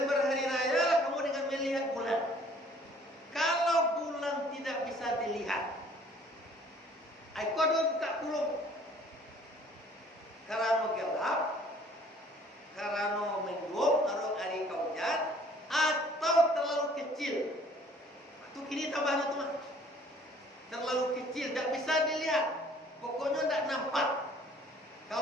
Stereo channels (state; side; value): normal; both; correlation 0.56